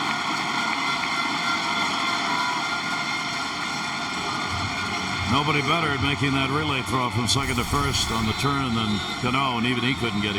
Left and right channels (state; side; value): identical; both; correlation 1.00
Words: Nobody better at making that relay throw from second to first on the turn than Cano, and even he couldn't get